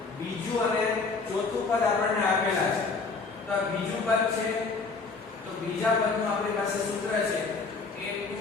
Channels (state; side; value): quieter; right; 4.2 dB